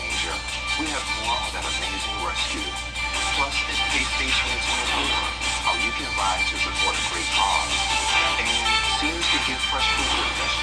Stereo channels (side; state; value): both; identical; correlation 1.00